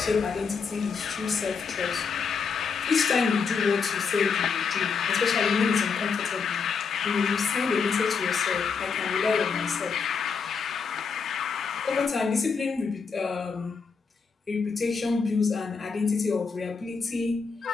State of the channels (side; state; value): right; quieter; 5.5 dB